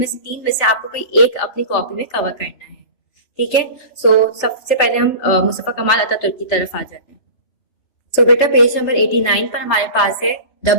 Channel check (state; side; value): late; right; 3.4 ms